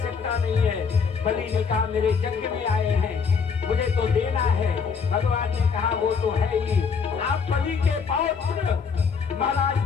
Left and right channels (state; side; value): quieter; right; 5.8 dB